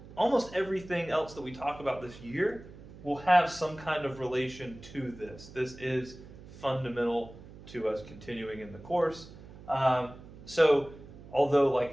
almost everything else that we talk about this year will have some kind of relation to this. This is fundamental to us continuing in the course. So although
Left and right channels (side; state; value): right; noise; hum, 17 dB below the sound